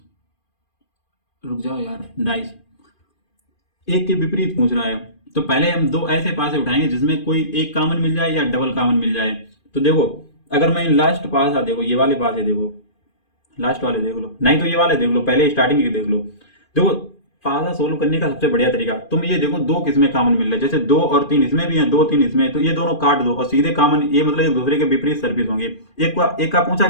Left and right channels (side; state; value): right; late; 2.5 ms